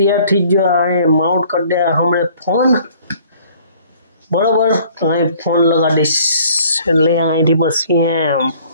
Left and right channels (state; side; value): inverted; both; correlation -0.56